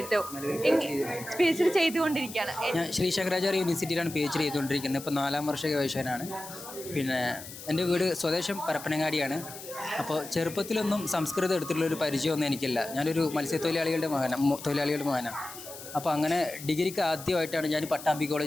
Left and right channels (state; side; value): noise; left; hiss, 13 dB below the sound